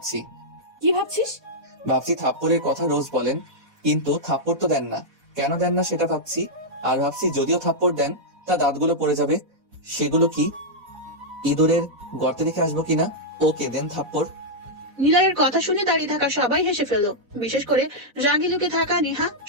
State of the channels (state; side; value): late; left; 4.1 ms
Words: কি ভাবছিস? ভাবছি থাপ্পড়ের কথা রোজ বলেন, কিন্তু থাপ্পড় তো দেন না, কেন দেন না সেটা ভাবছি। আর ভাবছি যদিও থাপ্পড় দেন তা দাঁতগুলো পড়ে যাবে, সেগুলো কি ইঁদুরের গর্তে রেখে আসবো কিনা? ওকে দেন থাপ্পড়। নিলয়ের কথা শুনে দাঁড়িয়ে থাকা সবাই হেসে ফেললো, বিশেষ করে রাগি লুকে থাকা নেহা